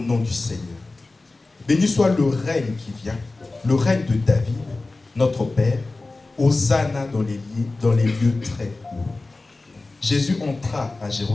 du Seigneur. Béni soit le règne qui vient, le règne de David, notre Père. Hosanna dans les lieux très hauts. Jésus entra à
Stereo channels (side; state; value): right; quieter; 3.3 dB